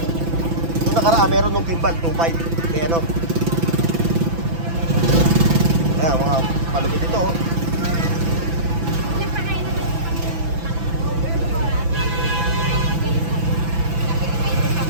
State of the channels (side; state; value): left; late; 6.0 ms